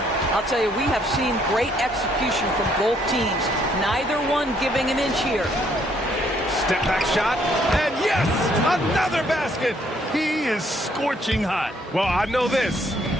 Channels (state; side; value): normal; both; correlation 0.68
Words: I'll tell you, we have seen great execution from both teams. Neither one giving an inch here. Step back shot. And yes, another basket. He is scorching hot. Well, I know this.